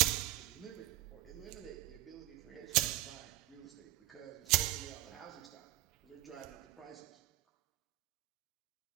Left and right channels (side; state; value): left; quieter; 17.4 dB